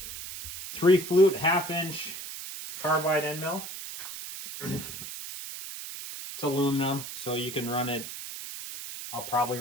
3-flute 1/2-inch carbide end mill. It's aluminum, so you can run it. I'll probably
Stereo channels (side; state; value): right; noise; hiss, 9 dB below the sound